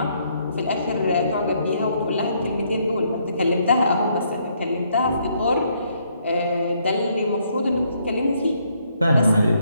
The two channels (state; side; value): inverted; both; correlation -0.71